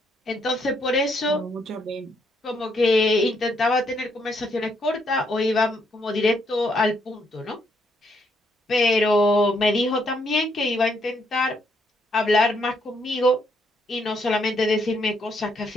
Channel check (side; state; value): both; normal; correlation 0.74